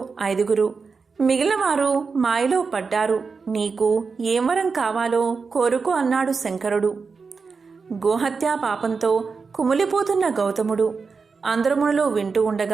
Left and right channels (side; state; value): left; quieter; 4.9 dB